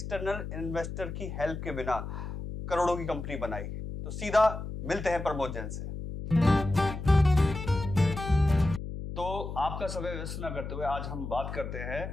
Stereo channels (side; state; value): left; noise; hum, 7 dB below the sound